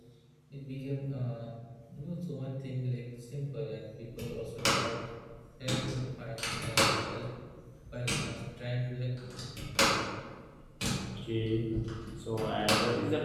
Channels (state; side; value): identical; both; correlation 1.00